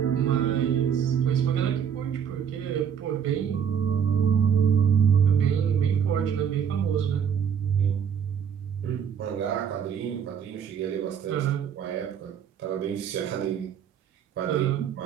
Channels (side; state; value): left; quieter; 7.9 dB